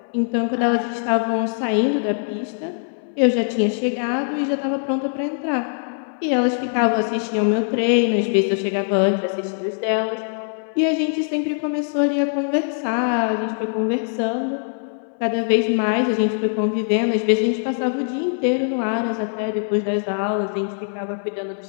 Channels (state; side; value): silent; right; 64 dB below the other